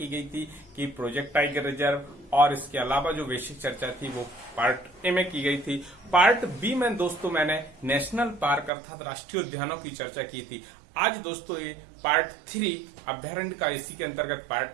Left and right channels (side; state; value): left; drops out; at 8.7 s